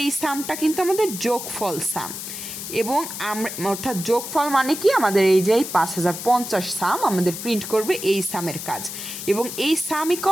এই সামটা কিন্তু আমাদের যোগফল সাম। এবং আমরা অর্থাৎ যোগফল মানে কি, আমাদের এই যে 5050 সাম আমাদের প্রিন্ট করবে এই সামের কাজ। এবং এই সাম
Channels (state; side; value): noise; left; hiss, 8 dB below the sound